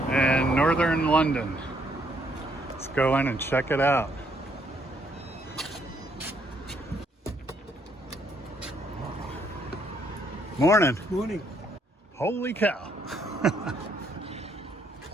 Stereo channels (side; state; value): both; normal; correlation 0.70